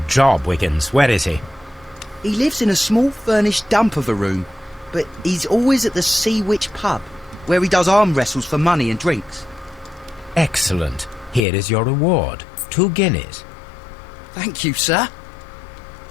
job, Wiggins. Where is he? He lives in a small furnished dump of a room, but he's always at the Sea Witch pub, where he does arm wrestles for money and drinks. Excellent. Here is your reward. 2 guineas. Thank you, sir.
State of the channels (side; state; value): right; drops out; at 11.5 s